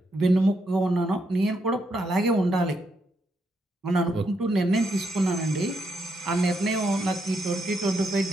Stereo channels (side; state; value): both; normal; correlation 0.79